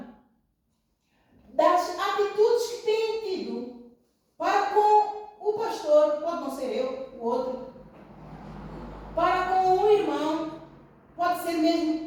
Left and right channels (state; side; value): identical; both; correlation 1.00